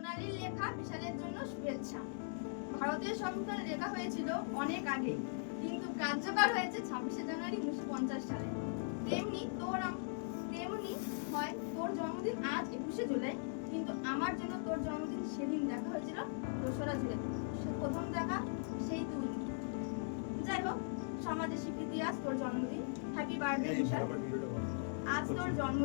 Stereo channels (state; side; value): silent; right; digital silence